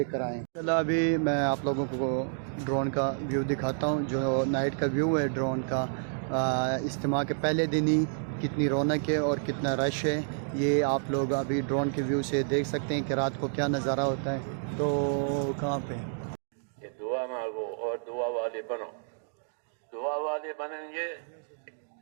کر آئیں. چلو ابھی میں آپ لوگوں کو ڈرون کا ویو دکھاتا ہوں, جو نائٹ کا ویو ہے ڈرون کا. اجتماع کے پہلے دن ہی کتنی رونق ہے اور کتنا رش ہے, یہ آپ لوگ ابھی ڈرون کے ویو سے دیکھ سکتے ہیں کہ رات کو کیا نظارہ ہوتا ہے. تو کہاں پہ کہ دعا مانگو اور دعا والے بنو. دعا والے بنیں گے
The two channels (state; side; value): silent; left; digital silence